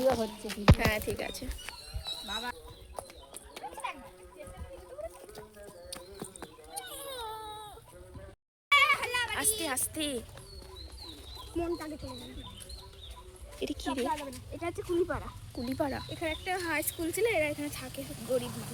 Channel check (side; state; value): both; identical; correlation 1.00